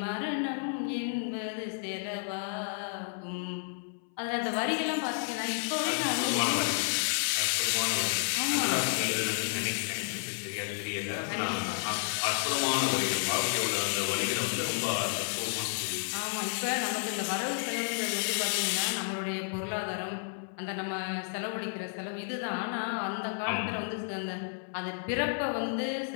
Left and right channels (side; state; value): right; silent; 57 dB below the other